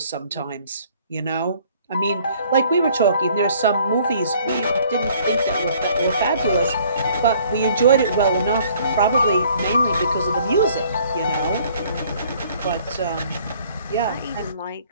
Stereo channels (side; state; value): both; inverted; correlation -0.58